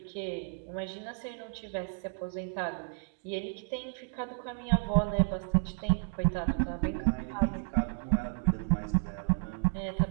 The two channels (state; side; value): silent; left; 56 dB below the other